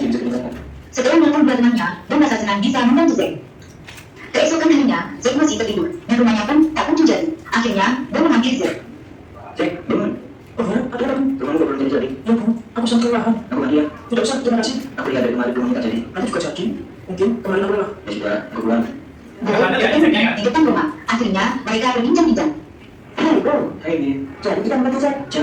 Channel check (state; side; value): identical; both; correlation 1.00